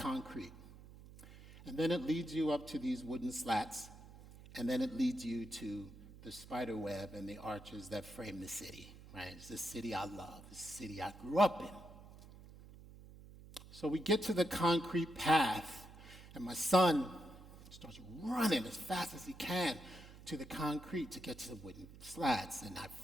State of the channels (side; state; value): right; noise; hum, 18 dB below the sound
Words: And then it leads you up to these wooden slats, and then it leads you to the spider web and the arches that frame the city. Right? It's the city I love, the city I grew up in. So we get to the concrete path, and my son starts running as fast as he can to the concrete to get to the wooden slats. And I